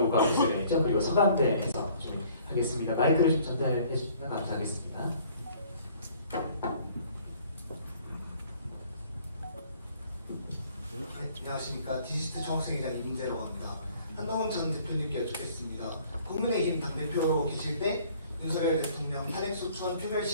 교수님이죠. 그리고 서강대에서 좀 하겠습니다. 마이크를 좀 전달해 주시면 감사하겠습니다. 안녕하십니까. 디지트 총학생회장 임대라고 합니다. 한동훈 전 대표님께 여쭙겠습니다. 국민의힘 당대표로 계실 때 윤석열 대통령 탄핵 소추안 표결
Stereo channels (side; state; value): both; inverted; correlation -0.56